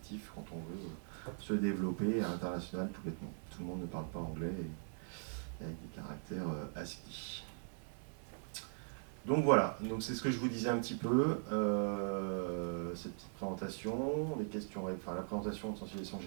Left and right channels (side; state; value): left; silent; 51 dB below the other